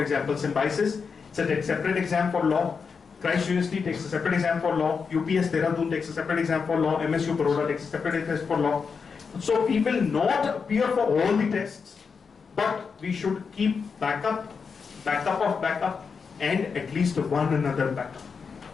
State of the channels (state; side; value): quieter; right; 5.6 dB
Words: example, Symbiosis, it's a separate exam for law. Christ University takes a separate exam for law. UPS Dehradun takes a separate exam for law. MSU Baroda takes a separate test for law. So we will not appear for all the tests, but we should keep backup of backup, and at least one another backup.